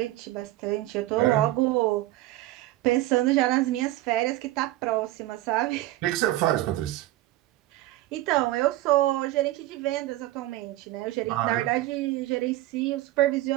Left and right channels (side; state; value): left; quieter; 16.4 dB